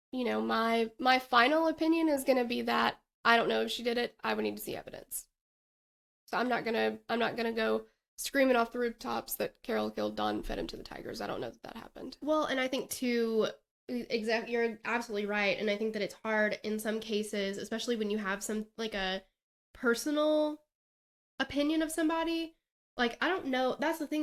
My final opinion is going to be that I don't know if she did it. I would need to see evidence. So I'm not gonna go screaming off the rooftops that Carole killed Don and fed him to the tigers. I don't know that happened. Well, and I think too, you're absolutely right. And I think that it's hard in some cases, especially when you have some, like, a personal opinion of somebody. Like, I don't know. That's the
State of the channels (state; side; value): identical; both; correlation 1.00